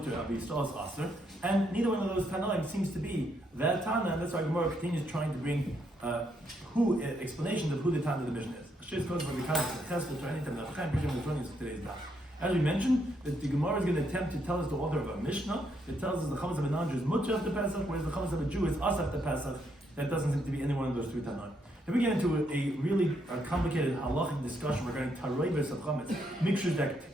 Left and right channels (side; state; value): both; normal; correlation 0.76